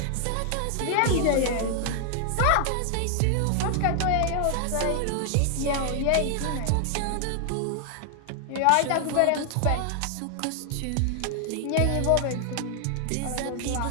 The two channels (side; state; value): both; different; correlation 0.00